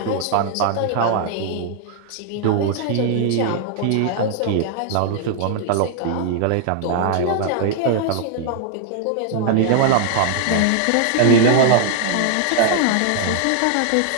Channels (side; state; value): both; different; correlation 0.00